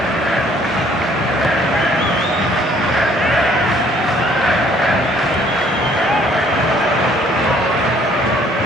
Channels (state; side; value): normal; both; correlation 0.60